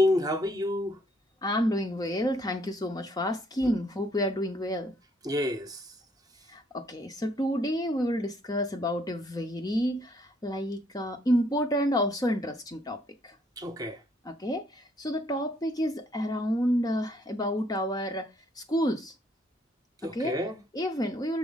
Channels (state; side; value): normal; both; correlation 0.67